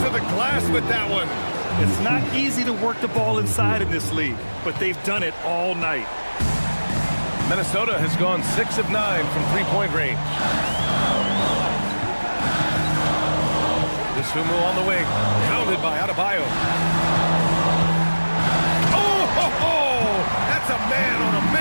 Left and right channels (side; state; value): both; inverted; correlation -1.00